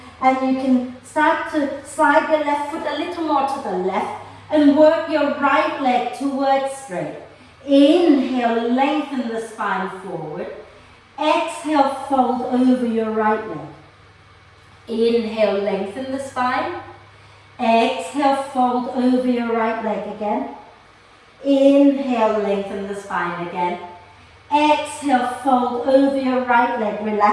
And you can start to slide your left foot a little more to the left and work your right leg towards straight. Inhale, lengthen the spine forward. Exhale, fold over your right leg. Inhale, lengthen the spine. Exhale, fold over your right leg again. Inhale, lengthen the spine again. Exhale, fold over your right leg.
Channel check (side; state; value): both; identical; correlation 1.00